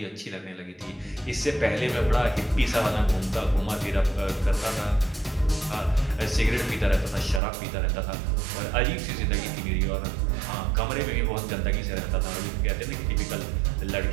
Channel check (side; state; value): left; drops out; at 7.4 s